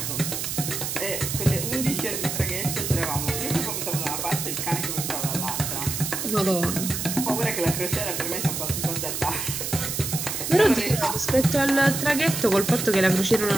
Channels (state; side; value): noise; right; hiss, 3 dB below the sound